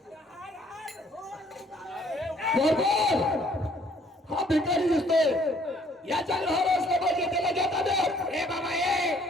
हा भिकारी दिसतोय याच्या घर असलं पाहिजे त्याला घेता दे. ए बाबा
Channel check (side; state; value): both; normal; correlation 0.62